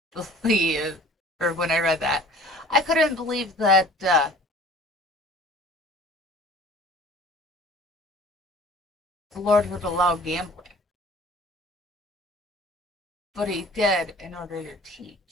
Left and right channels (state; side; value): normal; both; correlation 0.47